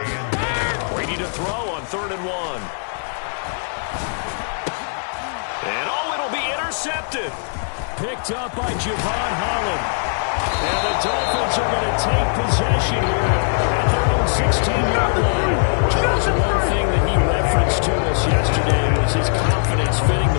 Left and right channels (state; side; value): silent; right; digital silence